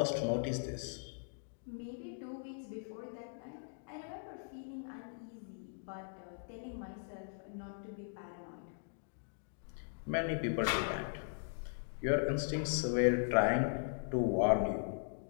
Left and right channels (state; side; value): silent; right; digital silence